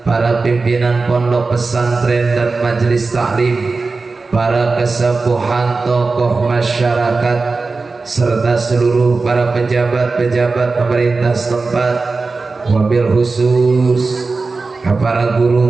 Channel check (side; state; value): left; quieter; 4.0 dB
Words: para pimpinan pondok pesantren dan majelis taklim, para kesepuhan tokoh masyarakat, serta seluruh para pejabat-pejabat pemerintah setempat, wabil khusus para